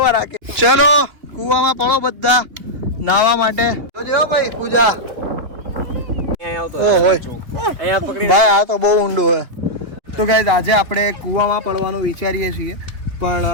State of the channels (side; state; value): left; late; 2.9 ms